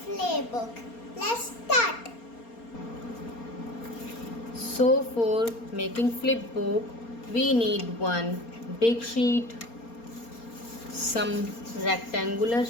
playbook. Let's start. So for making flip book, we need one big sheet, some rectangular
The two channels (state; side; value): late; right; 4.3 ms